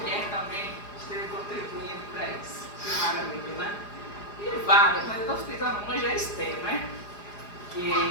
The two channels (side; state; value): right; late; 4.9 ms